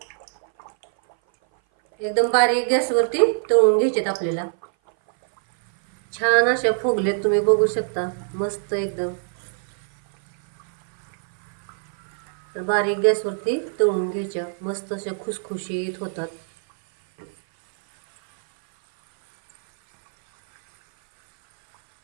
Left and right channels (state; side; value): silent; left; 58 dB below the other